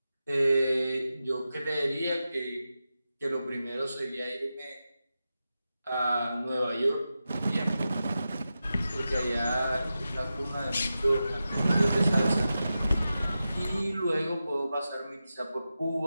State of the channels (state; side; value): inverted; both; correlation -0.91